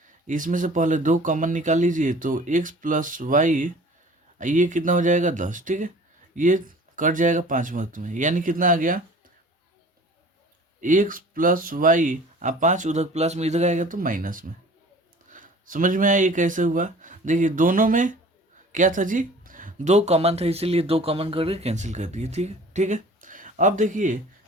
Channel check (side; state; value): both; normal; correlation 0.46